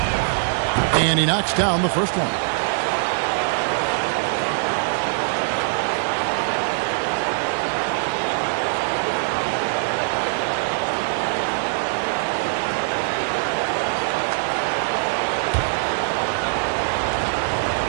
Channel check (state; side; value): silent; left; digital silence